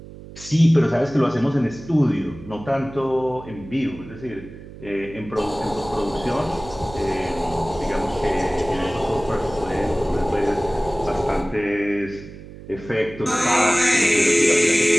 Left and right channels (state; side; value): noise; right; hum, 16 dB below the sound